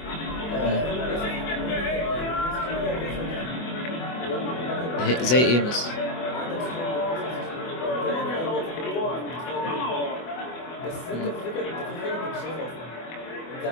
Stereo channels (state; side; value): late; right; 24 ms